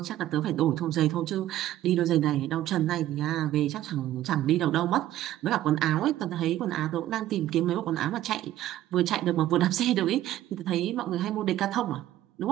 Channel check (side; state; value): left; quieter; 13.7 dB